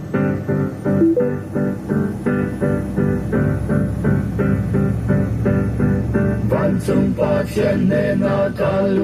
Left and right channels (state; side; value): identical; both; correlation 1.00